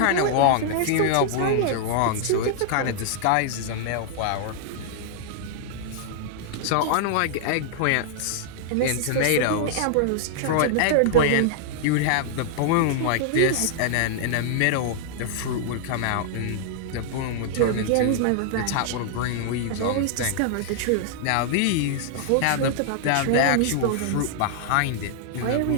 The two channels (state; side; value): different; both; correlation -0.01